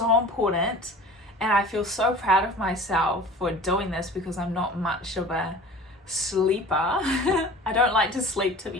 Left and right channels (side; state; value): both; normal; correlation 0.41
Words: important, and I feel so proud of myself for doing this because I'm not much of a sleeper. I don't like to sleep, to